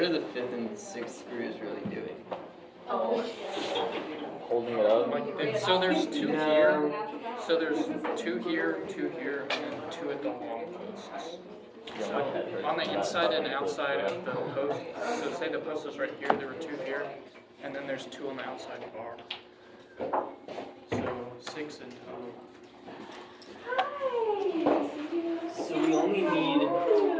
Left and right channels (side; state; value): both; identical; correlation 1.00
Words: the 5th and 6th screws really doing? Holding it up? Like, so there's 2 here. So there's 2 here, 2 here, and then 2 at the long posts. So on the inside and outside of the post, so say the post is right here, there were 2 here, and then there's 2 on the outside bar. So 6 in total. So we only need